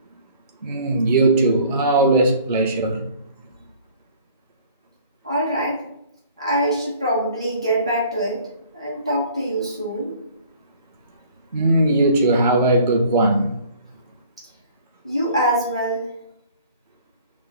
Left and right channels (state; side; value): inverted; both; correlation -0.52